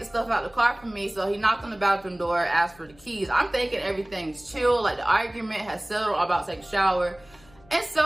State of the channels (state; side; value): noise; left; hum, 27 dB below the sound